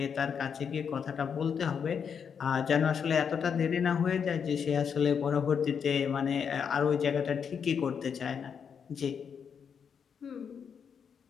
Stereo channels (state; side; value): quieter; right; 7.0 dB